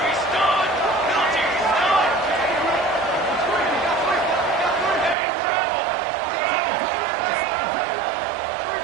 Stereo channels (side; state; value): left; drops out; at 5.2 s